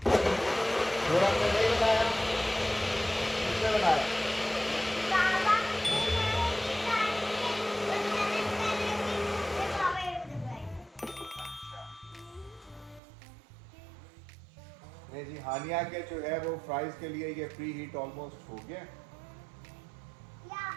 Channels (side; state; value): left; drops out; at 13.0 s